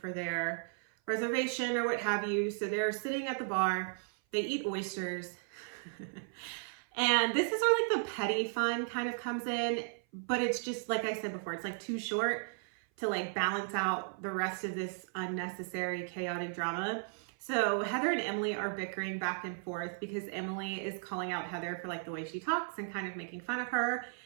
their reservation or what have you. So they're sitting at the bar. They eat oysters. And this is where like the petty fun kind of comes in. But it's just, like I said before, it's like too short to like balance out the rest of this unnecessary chaotic drama. So Heather and Emily are bickering back and forth because Emily is calling out Heather for like the way she talks and kind of making fun of her.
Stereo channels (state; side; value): silent; left; 54 dB below the other